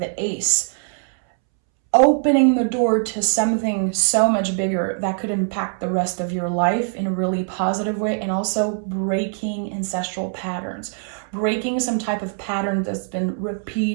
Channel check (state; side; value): silent; left; 64 dB below the other